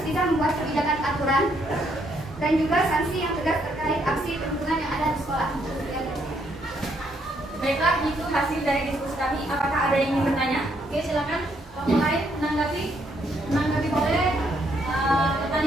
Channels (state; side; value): normal; both; correlation 0.72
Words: bisa membuat kebijakan aturan dan juga sanksi yang tegas terkait aksi perundungan yang ada di sekolah. Baiklah, itu hasil dari diskusi kami. Apakah ada yang ingin bertanya? Oke, silakan. Kelompok lain menanggapi boleh.